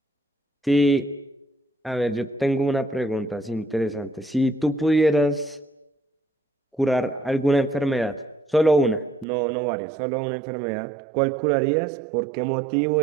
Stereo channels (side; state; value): left; drops out; at 9.2 s